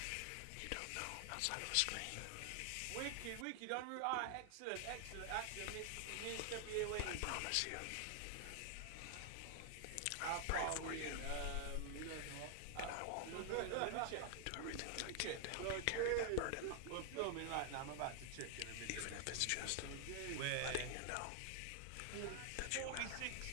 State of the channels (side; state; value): both; different; correlation 0.00